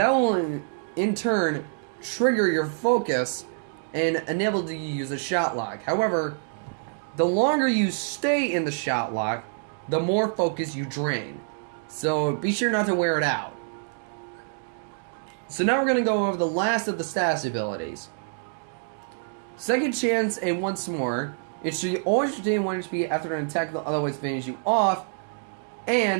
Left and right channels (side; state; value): left; silent; digital silence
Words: will in turn trigger your focus and enable you to use a shot lock. However, the longer you stay in the shot lock, the more focus you drain. So be sure not to wear it out. So now we're going to go over the last of the status abilities. Second Chance and Once More. It should always retain 1 HP after an attack that otherwise finish you off,